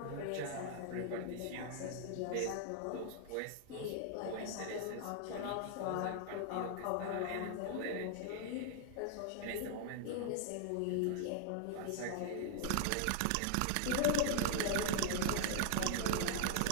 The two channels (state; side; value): different; both; correlation 0.00